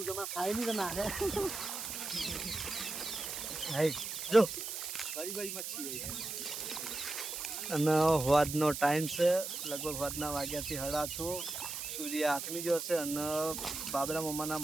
તમારે ખાઈ નહીં તો નાખે. જો બડી બડી મચ્છી અને વાદનો ટાઈમ છે, લગભગ વાદના વાગ્યાથી 8:30 સૂર્ય આથમી ગયો છે. અને બાબરા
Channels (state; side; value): noise; right; hiss, 5 dB below the sound